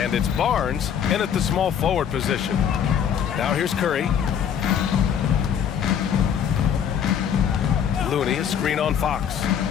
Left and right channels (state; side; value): quieter; right; 8.5 dB